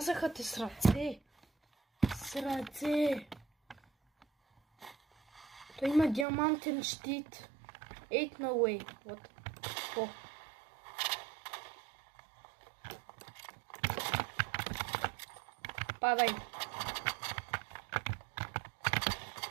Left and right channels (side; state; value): left; drops out; at 6.2 s